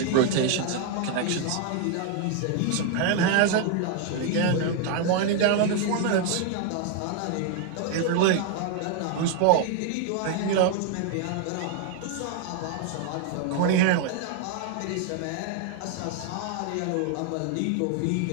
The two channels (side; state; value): both; different; correlation 0.00